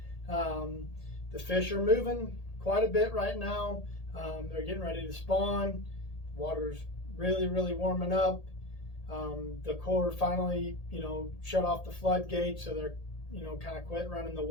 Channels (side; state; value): right; late; 1.8 ms